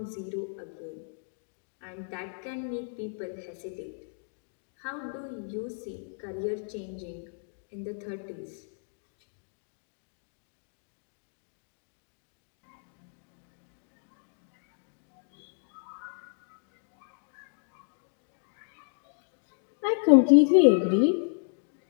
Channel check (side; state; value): right; silent; digital silence